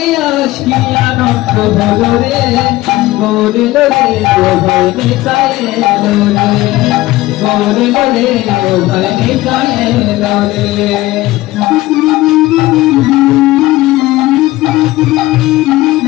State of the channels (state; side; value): quieter; right; 17.8 dB